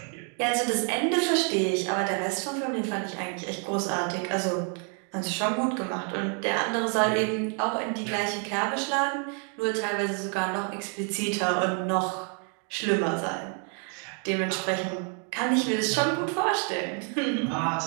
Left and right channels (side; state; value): left; quieter; 39.7 dB